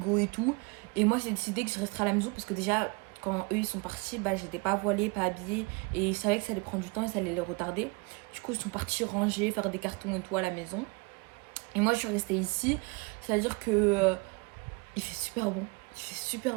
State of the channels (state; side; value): quieter; left; 29.4 dB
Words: et tout. Et moi, j'ai décidé que je resterai à la maison parce que déjà, quand eux, ils sont partis, bah, j'étais pas voilée, pas habillée. Et je savais que ça allait prendre du temps et ça allait les retarder. Du coup, ils sont partis ranger, faire des cartons et tout à la maison. Et moi, je suis restée ici. C'est-à-dire que il fait super bon. Il fait